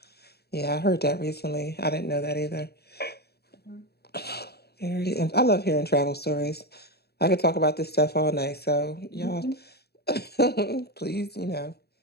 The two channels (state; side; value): late; right; 0.47 ms